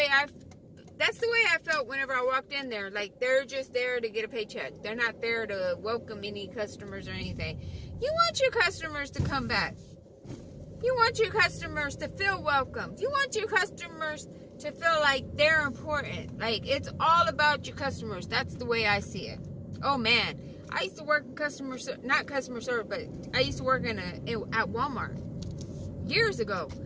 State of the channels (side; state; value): both; identical; correlation 1.00